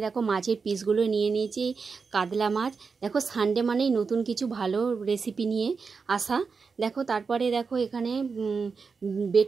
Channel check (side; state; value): left; quieter; 5.1 dB